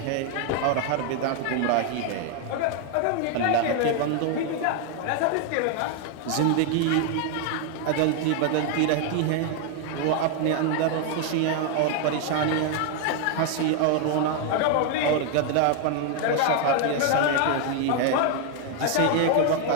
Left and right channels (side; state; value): both; different; correlation 0.00